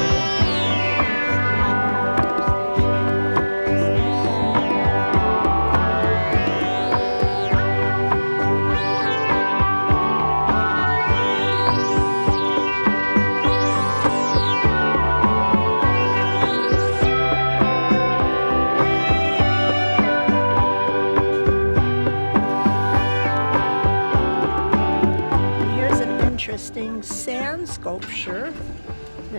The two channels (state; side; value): inverted; both; correlation -1.00